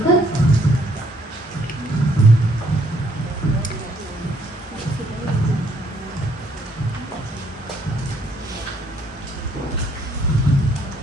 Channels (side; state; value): both; normal; correlation 0.67